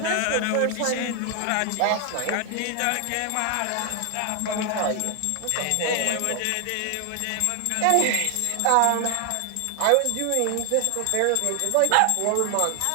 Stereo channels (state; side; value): different; both; correlation 0.00